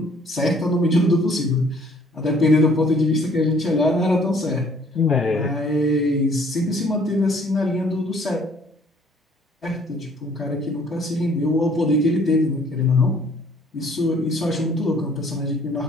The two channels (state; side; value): normal; both; correlation 0.59